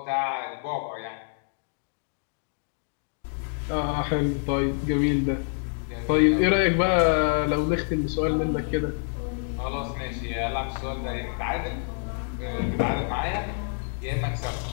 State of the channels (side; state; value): right; silent; 57 dB below the other